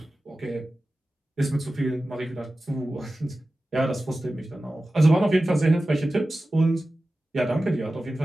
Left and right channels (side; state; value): both; normal; correlation 0.95